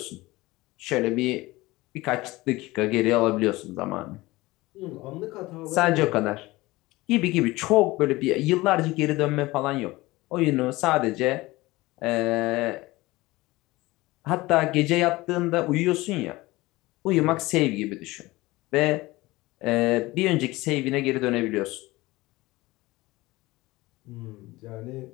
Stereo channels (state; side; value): quieter; right; 20.2 dB